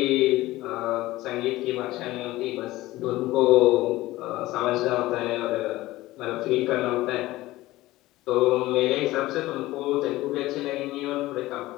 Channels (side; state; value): right; quieter; 17.6 dB